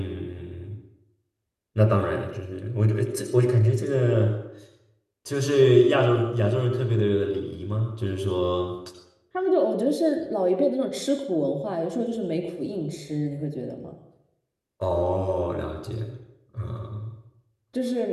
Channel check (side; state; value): both; identical; correlation 1.00